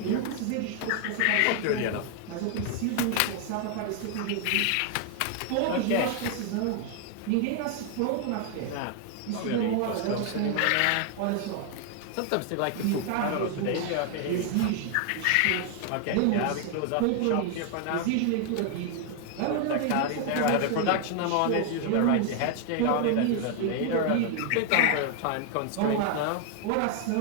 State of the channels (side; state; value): both; different; correlation 0.00